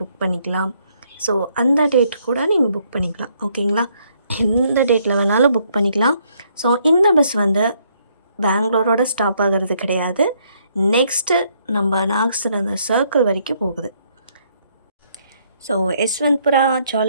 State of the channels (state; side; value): inverted; both; correlation -0.70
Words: புக் பண்ணிக்கலாம். ஸோ அந்த டேட் கூட நீங்கள் புக் பண்ணிக்கலாம். ஓகேங்களா? எந்த டேட்டில் வேணாலும் புக் பண்ணிக்கலாம். ஸோ இந்த பஸ் வந்து பெங்களூரோட ஸ்டாப் ஆகிறது கிடையாது. நெக்ஸ்ட்டு நம்ம நாகசந்திரா சர்க்கிள் வரைக்கும் போகுது. ஸோ யஸ்வந்த்புரா,